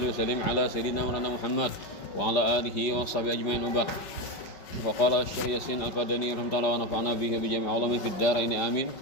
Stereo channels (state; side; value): late; right; 5.3 ms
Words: wa sallim ala sayyidina Muhammad wa ala alihi wa sahbihi ajmain. Wa qala Syekh Yasin Al-Qadani rahimahullah wa nafa'ana bihi bi jami' ulumi fid dharain amin.